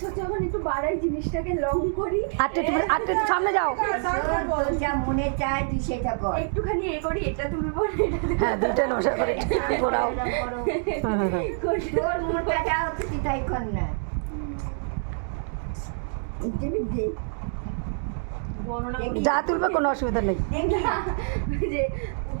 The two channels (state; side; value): silent; left; 61 dB below the other